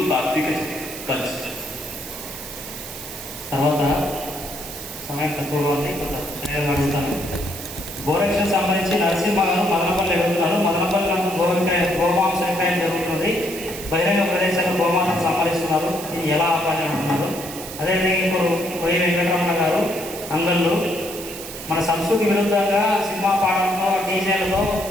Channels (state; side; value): noise; right; hiss, 11 dB below the sound